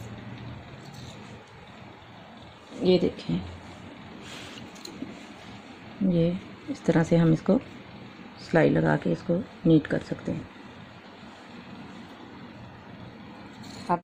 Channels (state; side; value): identical; both; correlation 1.00